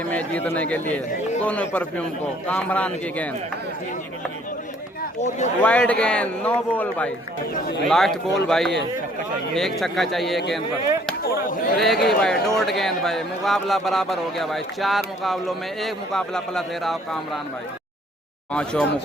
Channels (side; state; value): both; normal; correlation 0.60